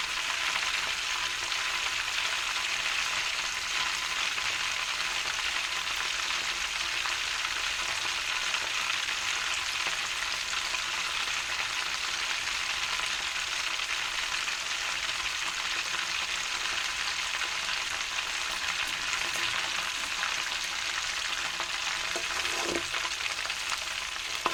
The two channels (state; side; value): identical; both; correlation 1.00